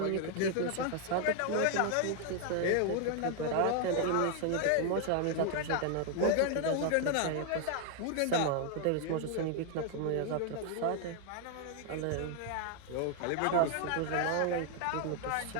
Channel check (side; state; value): both; different; correlation 0.00